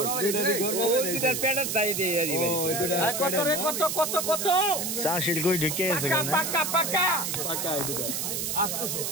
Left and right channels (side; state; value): right; noise; hiss, 2 dB below the sound